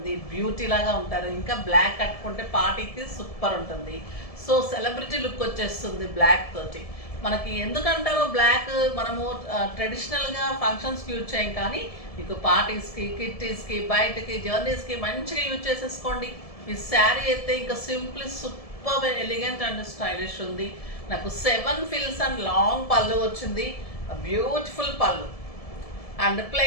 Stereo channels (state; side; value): late; right; 1.7 ms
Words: బ్యూటీ లాగా ఉంటారు. ఇంకా బ్లాక్ కట్టుకుంటే పార్టీకి సూపర్ ఉంటుంది. సో సెలబ్రిటీ లుక్ వచ్చేస్తుంది బ్లాక్ తోటి. మనకి ఎందుకంటారో బ్లాక్ మనము ట్రెడిషనల్గా ఫంక్షన్స్కి యూజ్ చేయం, కానీ మీకు పార్టీస్కి, కిట్టీస్కి, బయటకి, జర్నీస్కి మంచిగా యూజ్ చేసేసుకోండి. ఈ శారీ అయితే ఇంకా simply super elegant and stylish ఉంది. నాకు 7 ఫిల్స్ అండ్ లాంగ్ పళ్ళు వచ్చింది, బ్యూటిఫుల్ పళ్ళు and